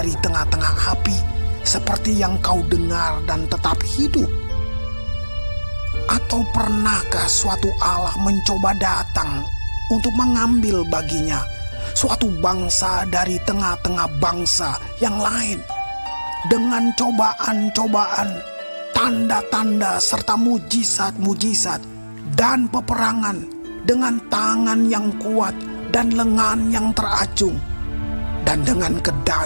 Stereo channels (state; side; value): inverted; both; correlation -1.00